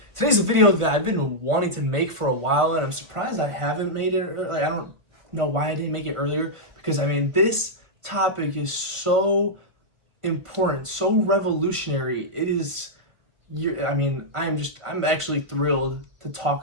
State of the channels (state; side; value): late; left; 1.5 ms